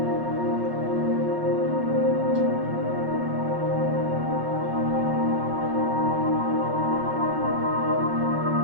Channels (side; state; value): left; late; 5.4 ms